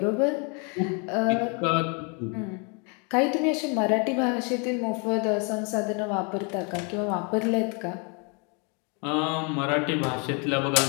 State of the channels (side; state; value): right; quieter; 34.9 dB